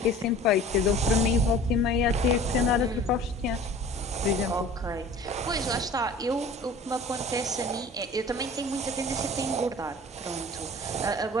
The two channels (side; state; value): both; normal; correlation 0.43